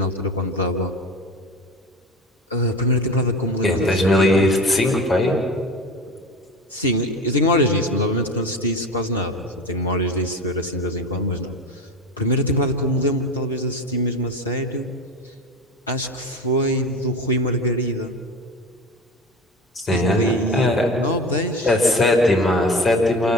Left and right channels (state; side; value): normal; both; correlation 0.30